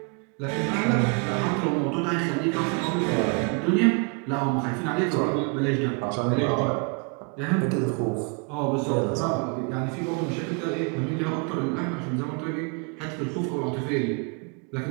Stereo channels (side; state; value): left; quieter; 34.9 dB